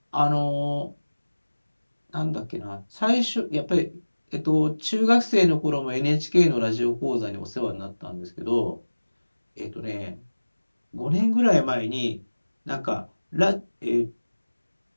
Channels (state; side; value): inverted; both; correlation -1.00